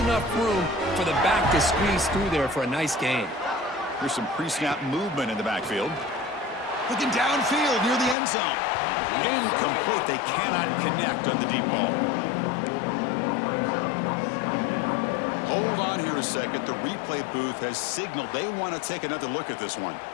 room for the back to squeeze through there for a nice gain. There's some pre-snap movement in the backfield. Looking downfield near the end zone. Incomplete. They cannot connect on the deep ball. Hold on here a second. The replay booth has signaled they want to take another look at this one.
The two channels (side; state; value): right; drops out; at 8.2 s